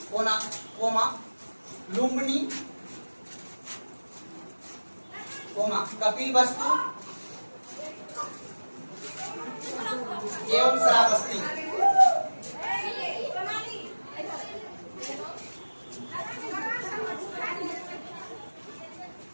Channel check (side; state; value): both; inverted; correlation -1.00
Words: कोना कोमा लुम्बिनी कोमा कपिलवस्तु एवं श्रावस्ती।